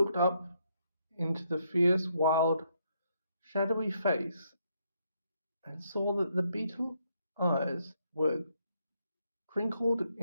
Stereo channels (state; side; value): inverted; both; correlation -0.75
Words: up into the fierce, wild, shadowy face and saw that the beetle eyes were crinkled